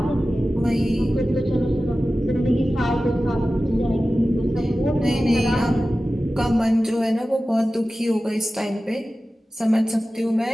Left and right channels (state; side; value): normal; both; correlation 0.95